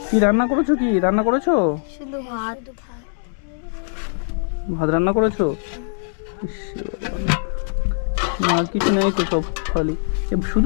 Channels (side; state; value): right; silent; digital silence